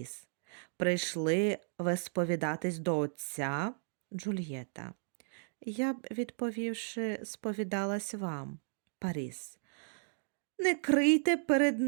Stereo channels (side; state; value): left; silent; digital silence